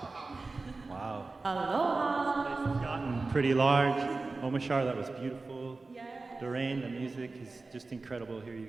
Wow. Aloha. This place has gotten pretty large. Omashar, that was beautiful. Doreen, the music is just incredible here, you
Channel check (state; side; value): quieter; left; 3.6 dB